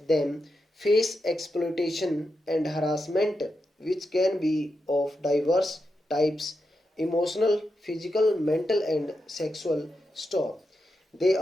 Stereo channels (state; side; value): normal; both; correlation 0.87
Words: them face exploitation and harassment, which can be of diverse types emotional, physical, mental, and sexual. Stop. They